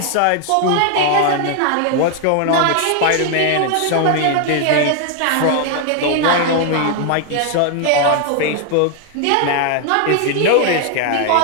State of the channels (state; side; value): different; both; correlation 0.00